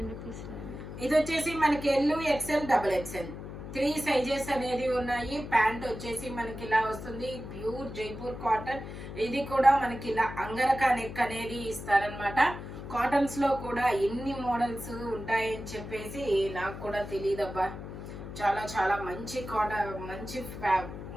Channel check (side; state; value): left; noise; hum, 10 dB below the sound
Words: ఇది వచ్చేసి మనకి L XL XXL 3 సైజెస్ అనేది ఉన్నాయి. ప్యాంట్ వచ్చేసి మనకి ఇలా వస్తుంది, ప్యూర్ జైపూర్ కాటన్. ఇది కూడా మనకి ఇలా అంగరకా నెక్ అనేది ఇస్తారనమాట. కాటన్స్ లో కూడా ఎన్ని మోడల్స్ ఉంటాయని చెప్పేసి నాకు కూడా తెలియదబ్బా. చాలా చాలా మంచి కాటన్, మంచి